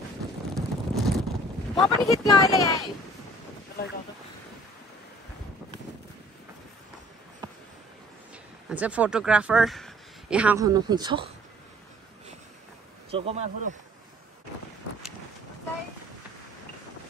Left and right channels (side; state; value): both; normal; correlation 0.54